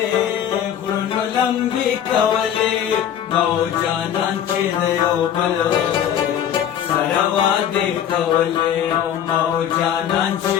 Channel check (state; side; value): quieter; right; 9.7 dB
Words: غرونو لمبې کولې مو جانان چې د یو بل سره وعدې کولې مو جانان چې